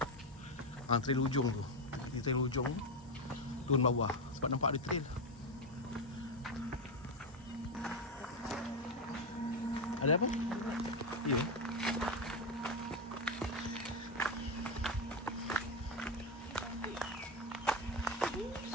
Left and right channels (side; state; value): both; normal; correlation 0.10